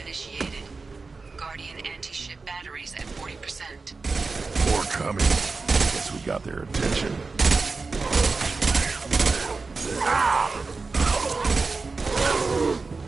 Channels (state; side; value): quieter; left; 4.1 dB